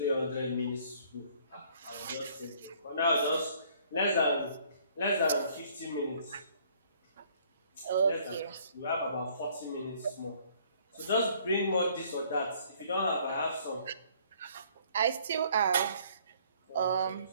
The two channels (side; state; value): both; inverted; correlation -0.60